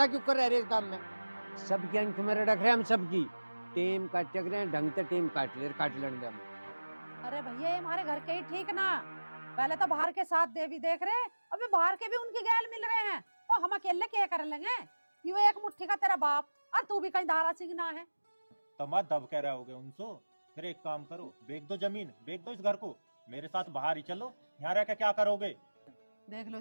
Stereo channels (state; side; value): inverted; both; correlation -1.00